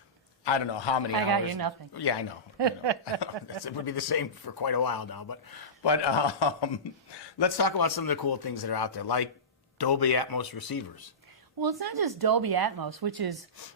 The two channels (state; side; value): normal; both; correlation -0.20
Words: I don't know how many hours. I got you nothing. Yeah, I know. It would be the same for quite a while now. But let's talk about some of the cool things that are out there, like Dolby Atmos receivers. Well, it's not just Dolby Atmos, which is